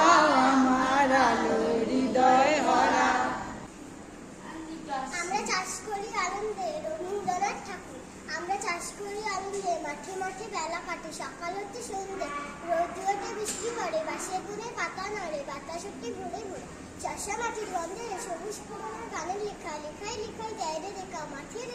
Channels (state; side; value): identical; both; correlation 1.00